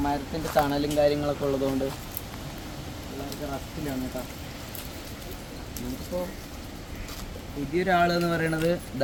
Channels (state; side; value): identical; both; correlation 1.00